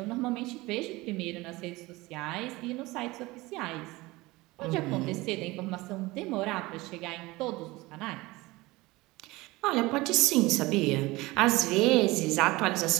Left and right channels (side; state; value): left; quieter; 21.1 dB